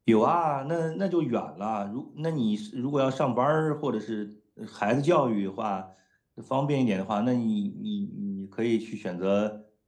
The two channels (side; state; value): both; identical; correlation 1.00